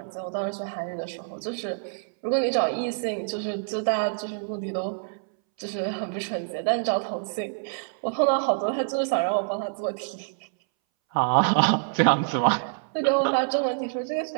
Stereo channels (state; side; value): silent; left; 61 dB below the other